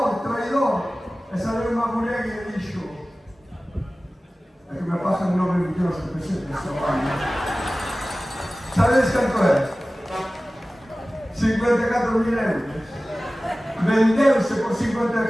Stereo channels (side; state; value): both; normal; correlation 0.97